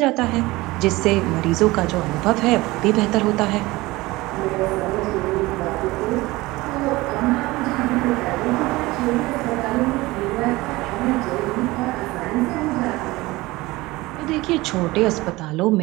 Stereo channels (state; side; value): quieter; left; 20.4 dB